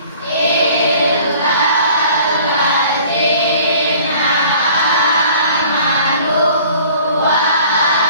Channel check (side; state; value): both; inverted; correlation -0.50